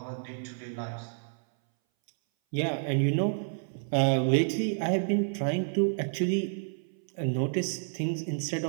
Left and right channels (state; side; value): silent; left; 58 dB below the other